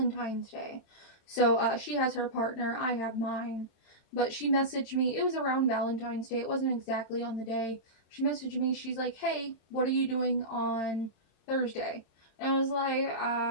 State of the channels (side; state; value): right; late; 27 ms